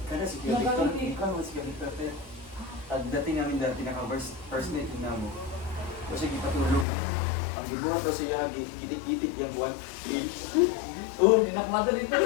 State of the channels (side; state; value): right; drops out; at 6.9 s